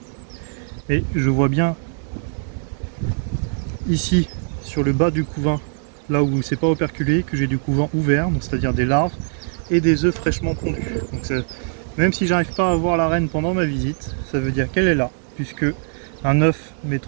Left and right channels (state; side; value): silent; left; digital silence